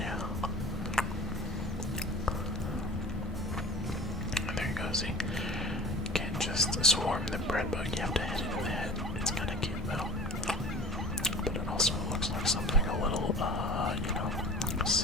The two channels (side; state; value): both; normal; correlation 0.41